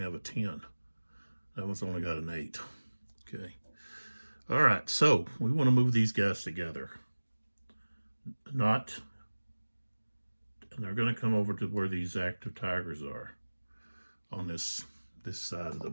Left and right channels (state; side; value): inverted; both; correlation -1.00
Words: have a 10. That one's only got an 8. Okay. All right, so we want to move these guys together. And they're going to come over to where these active Tigers are on this side of the